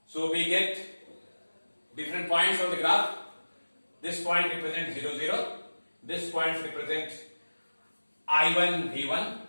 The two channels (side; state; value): both; inverted; correlation -1.00